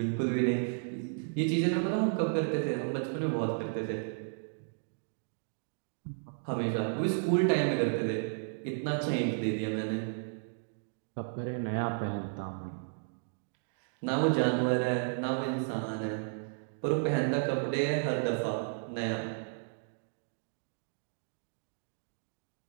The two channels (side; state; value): left; silent; digital silence